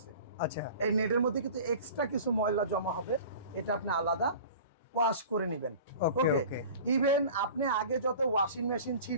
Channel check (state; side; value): inverted; both; correlation -0.40